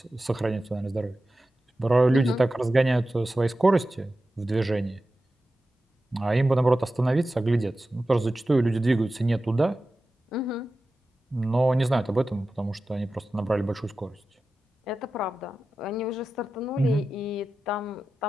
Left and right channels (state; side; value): normal; both; correlation 0.93